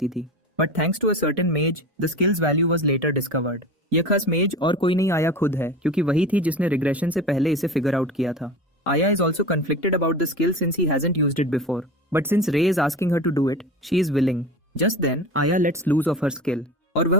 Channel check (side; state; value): both; normal; correlation 0.32